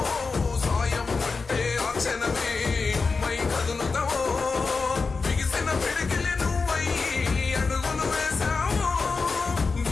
సాయం అంటే ఆ క్షణమే అమ్మై కదులుతావో, బిగిసిన పిడికిలి నువ్వై అడుగులు వేశావో,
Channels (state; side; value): quieter; right; 4.4 dB